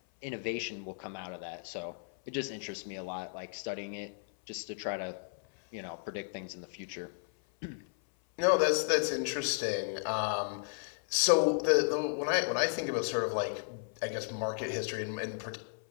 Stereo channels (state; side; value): silent; right; 55 dB below the other